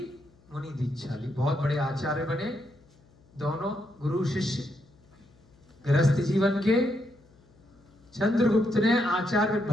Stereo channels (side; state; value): left; noise; hum, 30 dB below the sound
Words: मुनि दीक्षा ली। बहुत बड़े आचार्य बने दोनों गुरु शिष्य गृहस्थ जीवन के। चंद्रगुप्त ने आचार्य